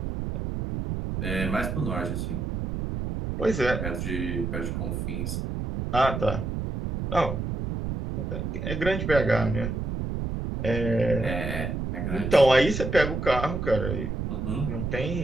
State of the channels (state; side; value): noise; right; rumble, 3 dB below the sound